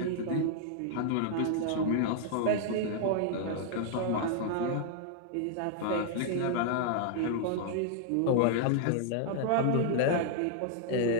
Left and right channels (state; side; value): different; both; correlation -0.01